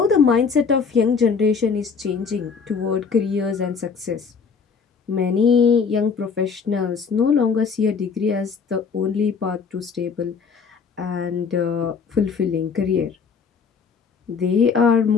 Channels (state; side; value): quieter; right; 5.7 dB